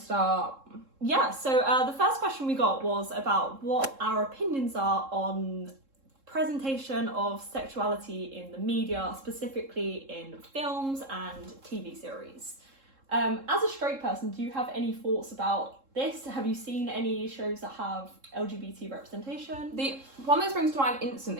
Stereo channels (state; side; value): late; left; 3.7 ms